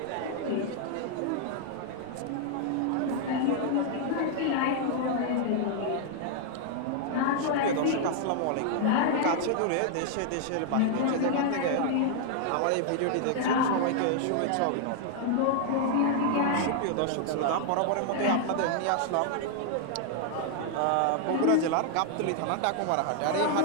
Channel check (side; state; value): both; different; correlation 0.00